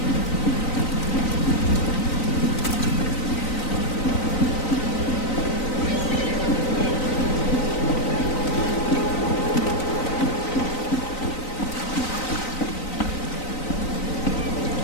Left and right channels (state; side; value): late; right; 3.9 ms